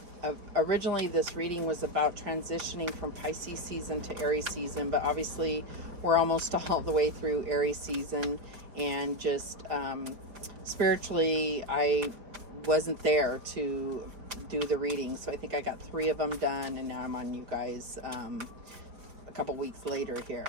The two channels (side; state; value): left; late; 4.6 ms